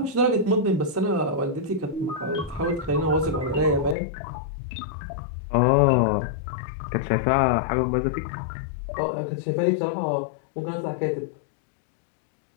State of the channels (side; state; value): right; drops out; at 4.0 s